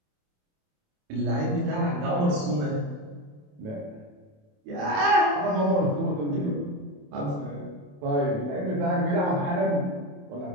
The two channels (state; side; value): late; left; 28 ms